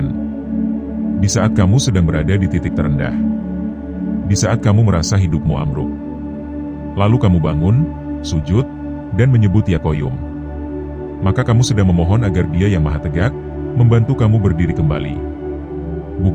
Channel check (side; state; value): both; identical; correlation 1.00